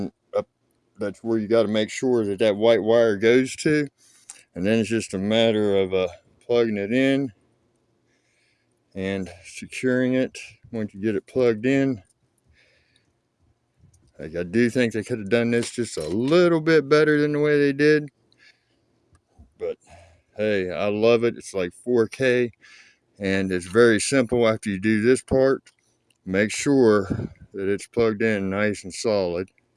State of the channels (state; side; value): identical; both; correlation 1.00